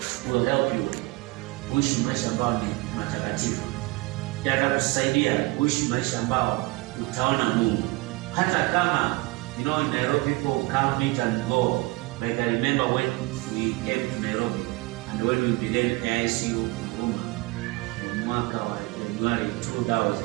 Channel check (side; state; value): left; quieter; 22.4 dB